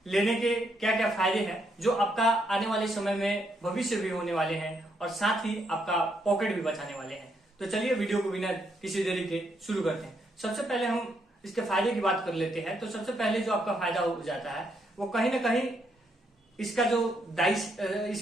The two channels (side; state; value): both; normal; correlation 0.76